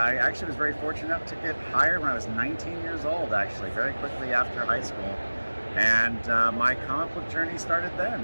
actually was very fortunate enough to get hired when I was 19 years old, actually, very quickly after high school. And my comic book journey started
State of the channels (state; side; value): inverted; both; correlation -1.00